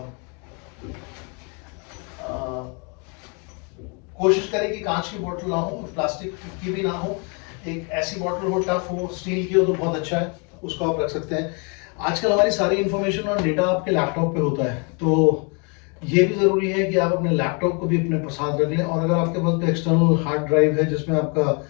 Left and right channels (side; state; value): right; quieter; 34.9 dB